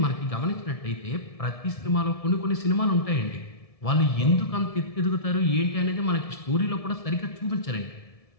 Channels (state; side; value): late; right; 1.7 ms